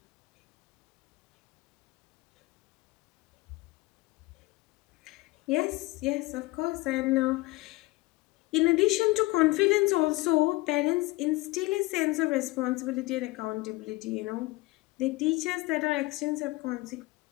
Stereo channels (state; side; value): quieter; right; 21.1 dB